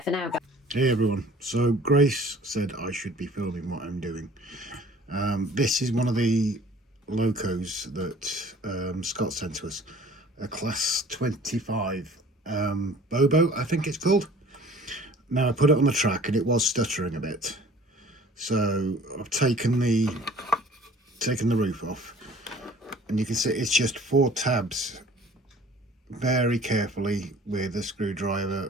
for now, guys. Hey everyone, so Grace said I should be filming what I'm doing. This is one of the locos that Scott sent to us, a class 25 Bobo, I think it's called. Now I put it on the track and it was stuttering a bit, so I've taken the roof off, and you can see it's just 4 tabs very carefully with a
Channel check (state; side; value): normal; both; correlation 0.50